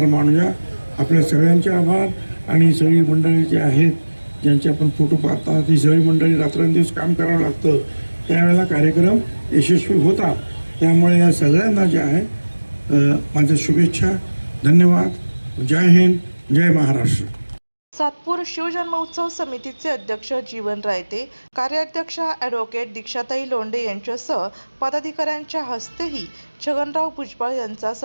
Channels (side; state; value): both; inverted; correlation -1.00